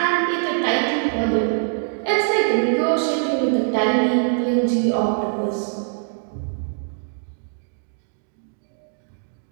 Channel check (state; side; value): silent; left; digital silence